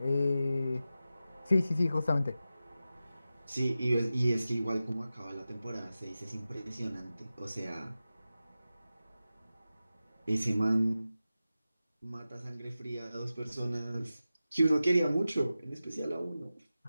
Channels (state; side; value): inverted; both; correlation -0.93